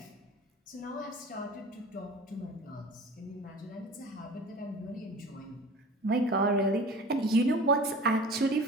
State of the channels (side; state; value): both; normal; correlation 0.40